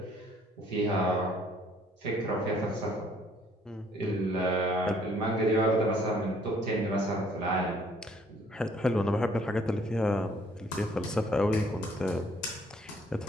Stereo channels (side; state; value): both; normal; correlation 0.62